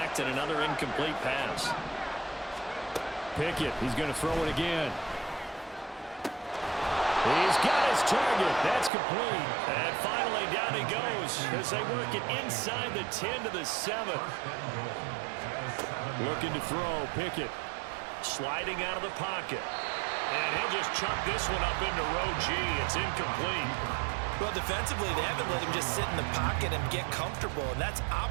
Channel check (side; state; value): left; drops out; at 8.9 s